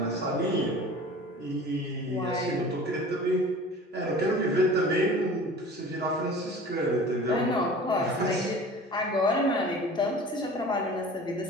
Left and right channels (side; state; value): both; normal; correlation 0.42